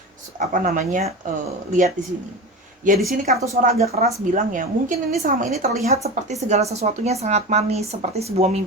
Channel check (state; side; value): normal; both; correlation 0.27